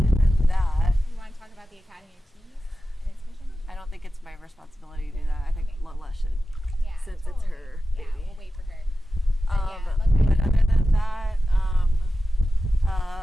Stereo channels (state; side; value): normal; both; correlation 0.94